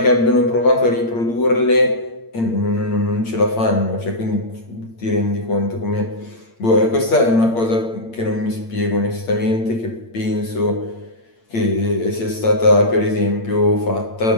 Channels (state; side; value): late; right; 8.8 ms